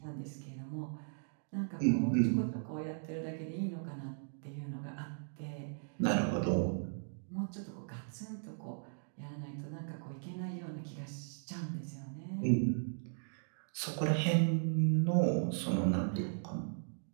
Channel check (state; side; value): silent; left; digital silence